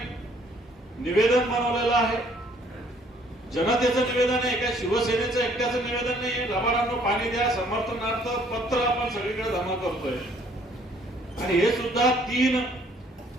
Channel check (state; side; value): normal; both; correlation 0.61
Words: निवेदन बनवलेलं आहे. जनतेचं निवेदन आहे, काय शिवसेनेचं एकट्याचं निवेदन नाही. लबाडांना पाणी द्या समर्थनार्थ पत्र आपण सगळीकडे जमा करतोय. आणि हे सुद्धा 3